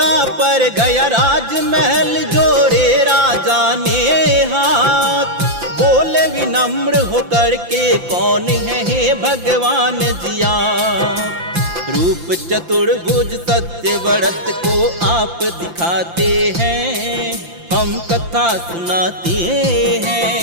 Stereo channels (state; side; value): late; left; 5.8 ms